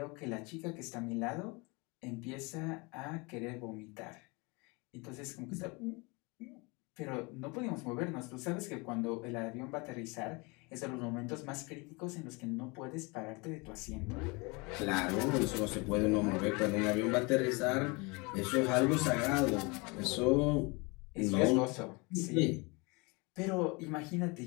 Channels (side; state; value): right; quieter; 28.0 dB